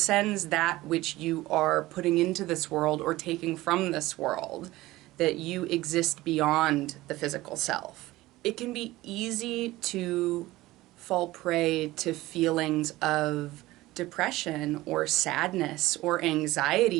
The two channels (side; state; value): left; quieter; 17.9 dB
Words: that which you are putting into this world or taking from this world, that you exist beyond the physical self. It can be easy to fall prey to feelings of depression or sadness or